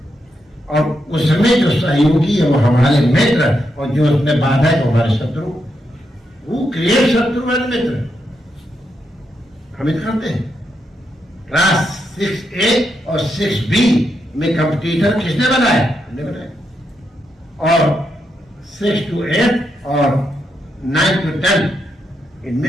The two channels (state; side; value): normal; both; correlation 0.82